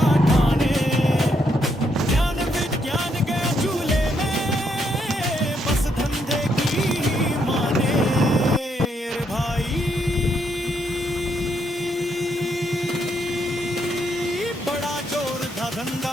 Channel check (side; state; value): both; normal; correlation 0.76